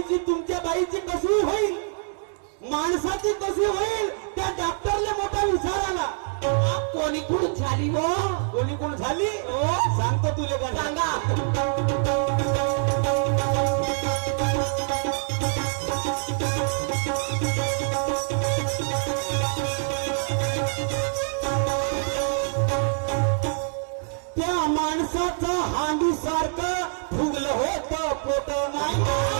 तुमच्या बाईची कशी होईल? माणसाची कशी होईल? त्या डॉक्टरला मोठा विचार आला. कोणी कुठून झाली हो? कोणी कोण झाली? सांगतो तुले का? सांगा. त्या माणसाचं हांडी सारखं फुगलं होतं पोट. नाही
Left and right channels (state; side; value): silent; left; digital silence